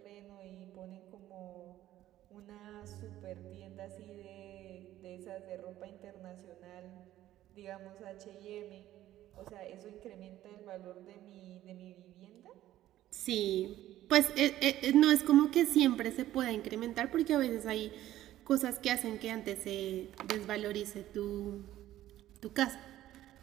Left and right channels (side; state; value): left; quieter; 13.7 dB